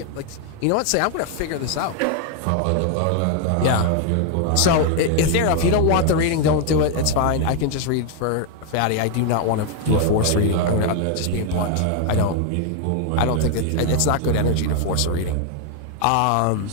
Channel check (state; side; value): different; both; correlation 0.00